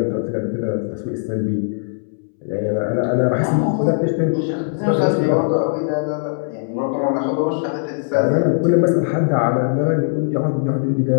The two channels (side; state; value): right; silent; 65 dB below the other